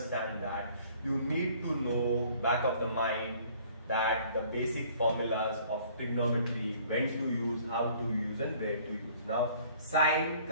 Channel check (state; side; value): inverted; both; correlation -0.56